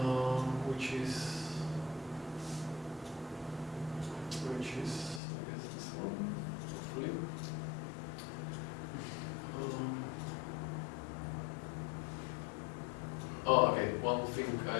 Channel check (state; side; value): drops out; right; at 5.2 s